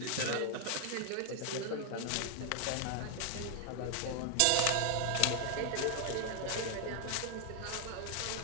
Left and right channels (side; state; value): both; different; correlation 0.00